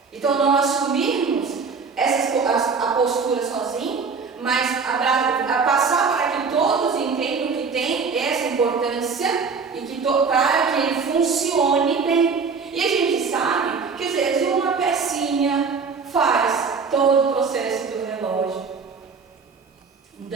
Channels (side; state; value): left; quieter; 5.1 dB